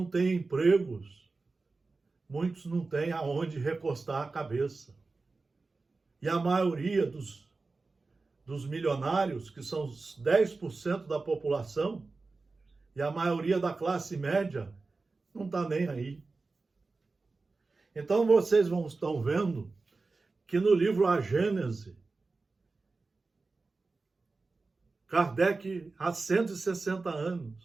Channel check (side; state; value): left; quieter; 3.8 dB